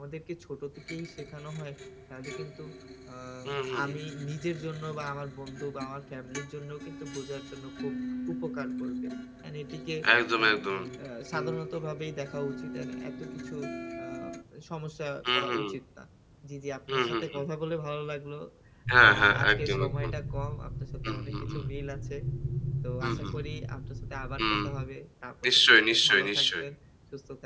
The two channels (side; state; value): both; identical; correlation 1.00